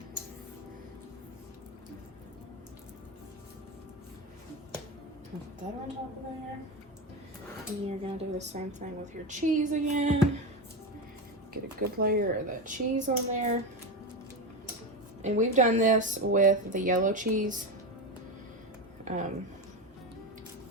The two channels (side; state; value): both; normal; correlation 0.17